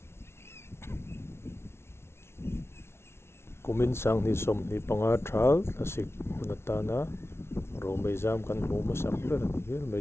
kumin sang ni somni panga thal lasik hunatana ro mai zam kan hmu masak ber ani hel mai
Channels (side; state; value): right; late; 0.12 ms